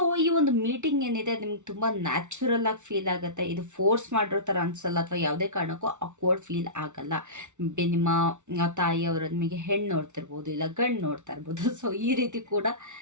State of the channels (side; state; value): left; late; 0.84 ms